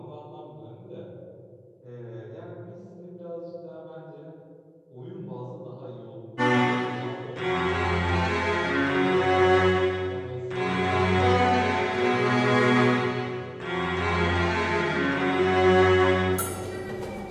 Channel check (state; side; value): identical; both; correlation 1.00